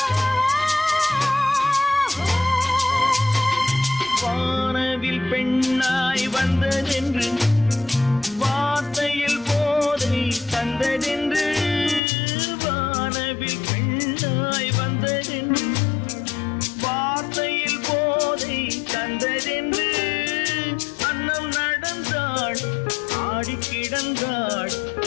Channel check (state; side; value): drops out; right; at 12.0 s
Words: வானவில் பெண்ணாய் வந்ததென்று வார்த்தையில் போதை தந்ததென்று வானவில் பெண்ணாய் வந்ததென்று வார்த்தையில் போதை தந்ததென்று அன்னம் நடந்தாள் ஆடி கிடந்தாள்